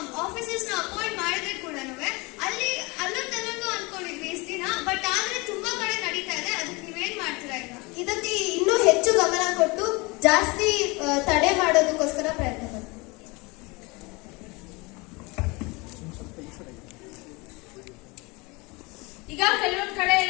ಆಫೀಸರ್ಸ್ ನ ಅಪಾಯಿಂಟ್ ಮಾಡಿದ್ರೆ ಕೂಡ ಅಲ್ಲೊಂದು ಅನ್ಕೊಂಡಿದ್ವಿ ಇಷ್ಟು ದಿನ. ಬಟ್ ಆದ್ರೆ ತುಂಬಾ ಕಡೆ ನಡೀತಾ ಇದೆ. ಅದಕ್ಕೆ ನೀವೇನ್ ಮಾಡ್ತೀರಾ? ಈಗ ಇದಕ್ಕೆ ಇನ್ನೂ ಹೆಚ್ಚು ಗಮನ ಕೊಟ್ಟು ಜಾಸ್ತಿ ತಡೆ ಮಾಡೋದಕ್ಕೋಸ್ಕರ ಪ್ರಯತ್ನ ಪಡ್ತೀವಿ. ಈಗ ಕೆಲವೊಂದ್ ಕಡೆ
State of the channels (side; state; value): right; quieter; 26.0 dB